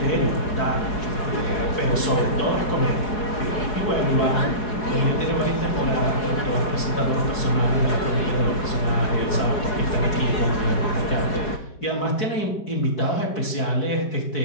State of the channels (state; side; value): late; right; 4.8 ms